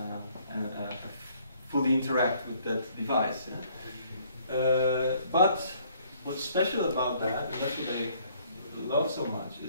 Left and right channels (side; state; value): both; inverted; correlation -0.63